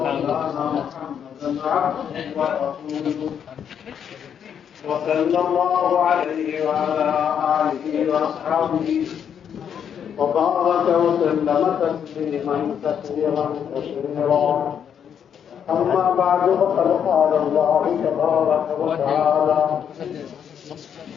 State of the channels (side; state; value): right; quieter; 8.3 dB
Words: محمدا عبده ورسوله وصلى الله عليه وعلى آله وأصحابه وبارك وسلم تسليما كثيرا أما بعد فقد قال الله تبارك وتعالى